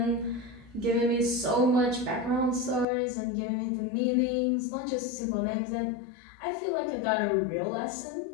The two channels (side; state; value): right; drops out; at 2.9 s